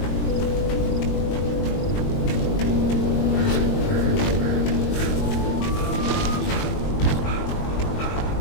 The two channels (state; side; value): late; right; 21 ms